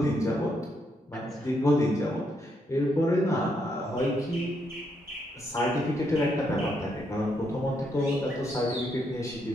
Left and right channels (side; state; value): both; normal; correlation 0.77